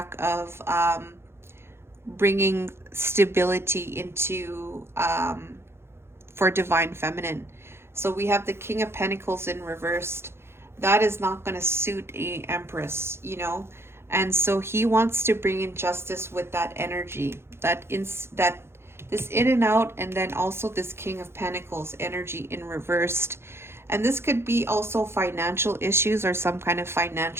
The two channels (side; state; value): left; late; 0.12 ms